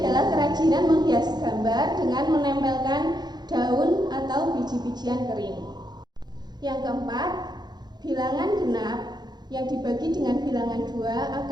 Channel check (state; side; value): late; left; 0.20 ms